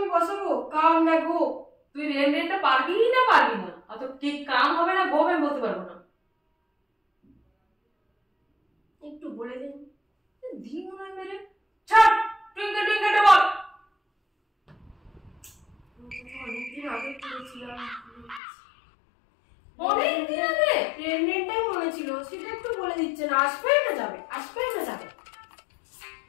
বসাবো কাম না গো। তুই রেন রেনটা পারবি না পারবি না? অত ঠিক কাম হবে না গো আমি বলতে পারবো না। একটু বলে দিন। দি মনে হয় মেরে ছাড়। টুইঙ্কেল টুইঙ্কেলটা বল। অনেকদিন আগে করেছিলাম, অনেকদিন আগে ট্রেনটাই মনে ছিল, সেটা একটু বলে দিচ্ছেন। আসবে না যাবে, আসবে না যাবে?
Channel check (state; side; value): drops out; right; at 18.4 s